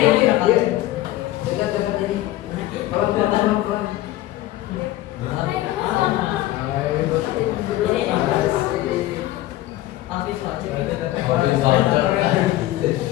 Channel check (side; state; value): right; quieter; 15.5 dB